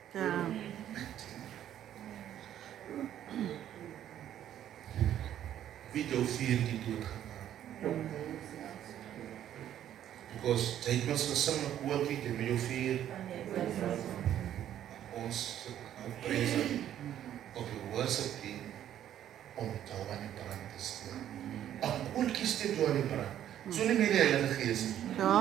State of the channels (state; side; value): quieter; left; 11.1 dB